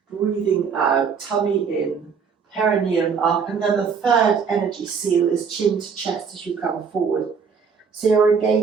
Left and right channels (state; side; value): quieter; left; 6.1 dB